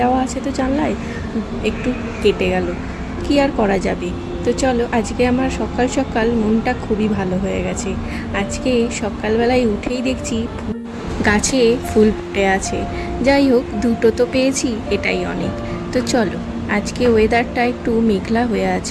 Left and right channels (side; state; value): both; identical; correlation 1.00